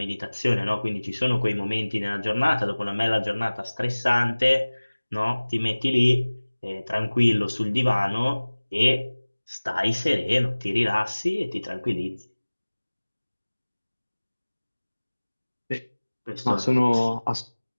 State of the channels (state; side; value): inverted; both; correlation -1.00